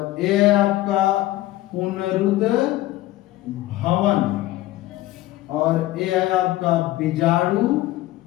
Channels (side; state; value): right; quieter; 16.2 dB